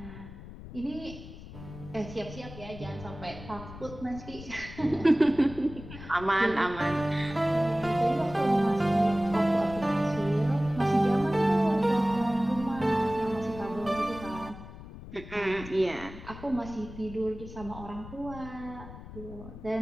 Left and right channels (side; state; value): left; noise; rumble, 14 dB below the sound